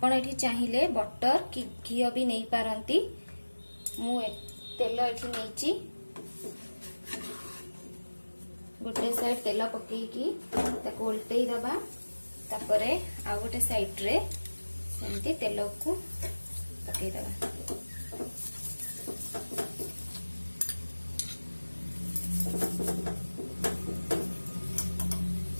एठी चाहिए बटर कि घी भी नहीं पारंती। मु तेल एठी नैची गोटे साइड तेल पकेकी ताको उल्टई दबा तापरे आ गोटे साइड रे सेमती तेल को पकई दबा।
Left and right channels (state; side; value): inverted; both; correlation -1.00